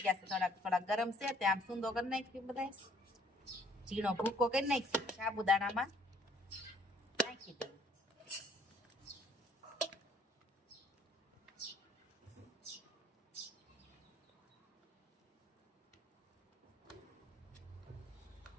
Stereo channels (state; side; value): normal; both; correlation 0.61